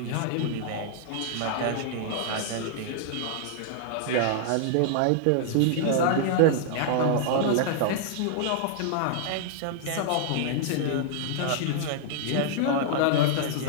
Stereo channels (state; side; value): different; both; correlation -0.01